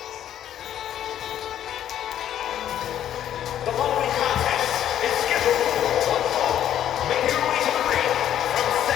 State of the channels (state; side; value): quieter; right; 10.8 dB